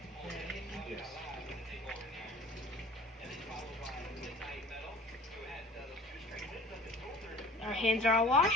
Our hands are all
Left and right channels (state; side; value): normal; both; correlation 0.46